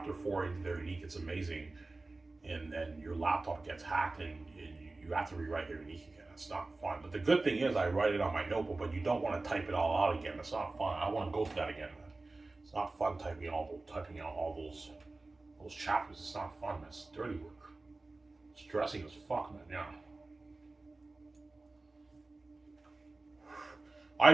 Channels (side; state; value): left; quieter; 3.3 dB